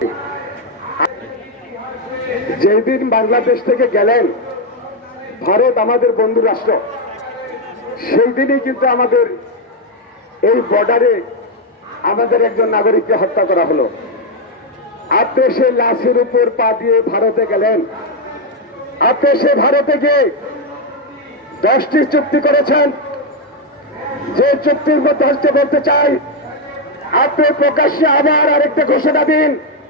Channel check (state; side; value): normal; both; correlation 0.03